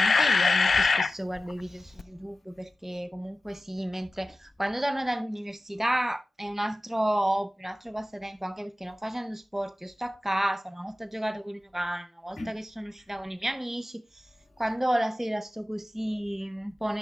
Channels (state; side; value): normal; both; correlation 0.95